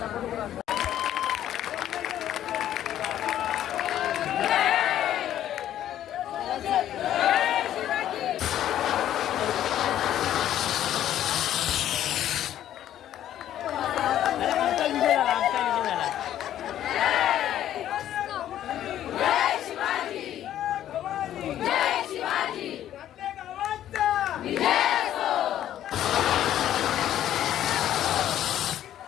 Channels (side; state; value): right; quieter; 11.7 dB